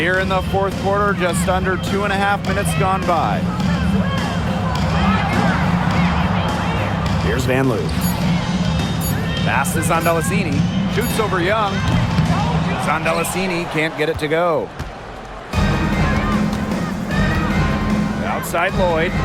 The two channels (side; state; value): both; identical; correlation 1.00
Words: in the fourth quarter, just under 2.5 minutes gone by. Here's Van Loo. Pass to Zondelasini. Shoots over Young. Zondelasini can't get it to go. Outside Lloyd.